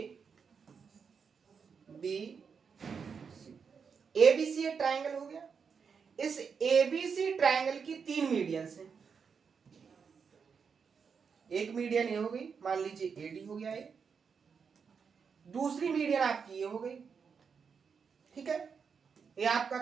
ABC एक ट्रायंगल हो गया। इस ABC ट्रायंगल की 3 मीडियंस हैं, एक मीडियन ये हो गई, मान लीजिए AD हो गया, ये दूसरी मीडियन आपकी ये हो गई, ठीक है, ये आपका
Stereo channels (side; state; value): left; quieter; 6.1 dB